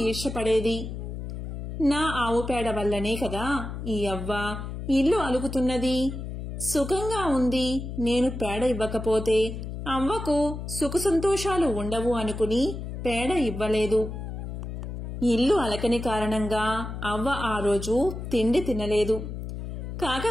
ఈర్ష్యపడేది. నా ఆవు పేడ వల్లనే కదా ఈ అవ్వ ఇల్లు అలుకుతున్నది, సుఖంగా ఉంది. నేను పేడ ఇవ్వకపోతే అవ్వకు సుఖ సంతోషాలు ఉండవు అనుకుని పేడ ఇవ్వలేదు. ఇల్లు అలకని కారణంగా అవ్వ ఆ రోజు తిండి తినలేదు.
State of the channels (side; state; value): left; noise; hum, 7 dB below the sound